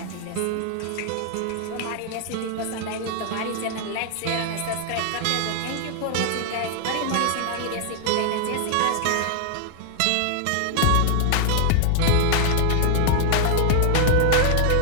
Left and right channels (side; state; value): both; different; correlation -0.01